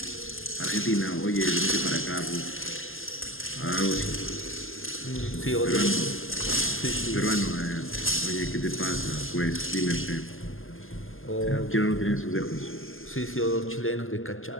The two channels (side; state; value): right; late; 0.59 ms